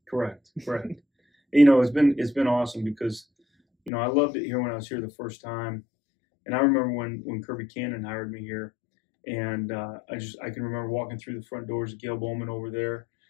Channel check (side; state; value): right; drops out; at 3.9 s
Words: Correct. It's been awesome because, I loved it here when I was here the first time, and I remember when Kirby Cannon hired me here, and I can remember walking through the front doors of Gail Bowman over there,